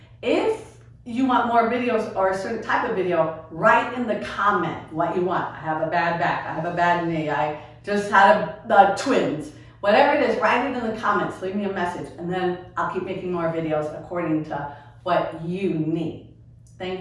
If you want more videos or a certain type of video, write in the comment what you want. I have a bad back, I have a bad knee, I just had twins. Whatever it is, write it in the comments, leave me a message, and then I'll keep making more videos according to what you need.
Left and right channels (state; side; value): identical; both; correlation 1.00